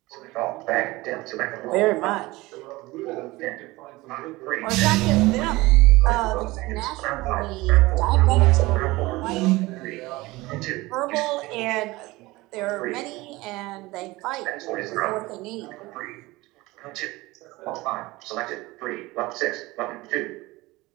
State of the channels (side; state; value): left; quieter; 20.6 dB